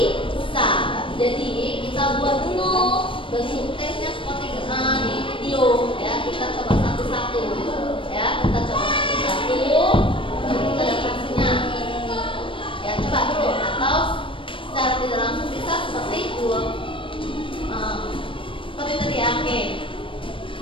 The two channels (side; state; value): right; late; 0.25 ms